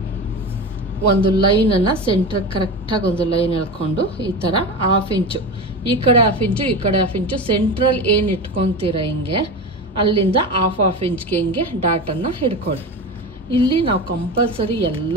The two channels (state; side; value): normal; both; correlation 0.25